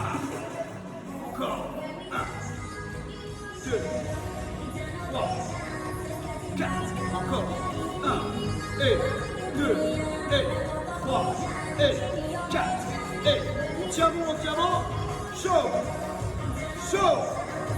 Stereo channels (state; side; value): identical; both; correlation 1.00